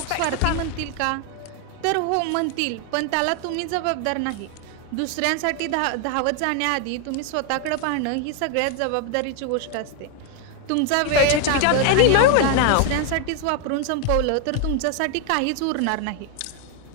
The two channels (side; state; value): both; different; correlation 0.01